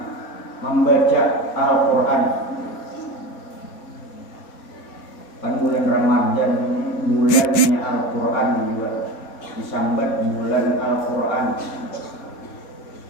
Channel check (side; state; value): right; late; 4.2 ms